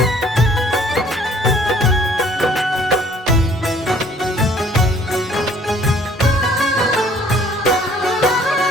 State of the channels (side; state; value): both; normal; correlation 0.58